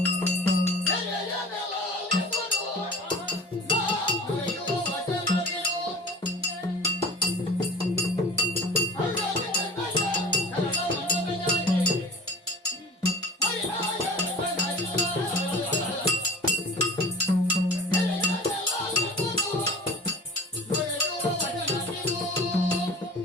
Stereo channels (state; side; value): normal; both; correlation 0.39